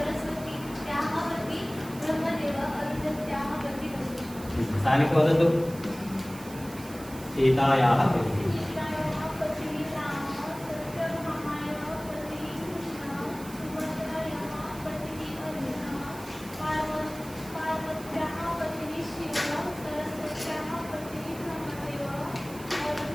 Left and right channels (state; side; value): noise; right; hiss, 17 dB below the sound